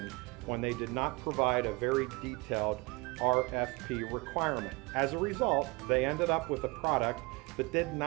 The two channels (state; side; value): quieter; left; 25.9 dB